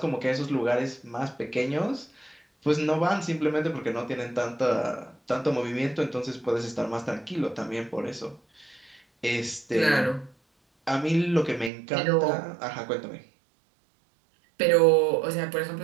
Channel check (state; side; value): drops out; left; at 11.7 s